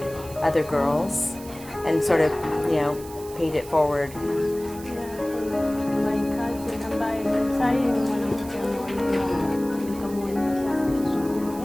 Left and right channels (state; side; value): noise; right; hiss, 17 dB below the sound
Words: other girls and sort of, paid it forward?